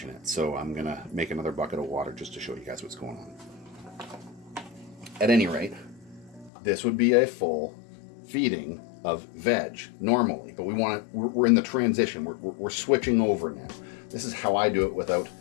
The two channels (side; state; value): right; drops out; at 6.5 s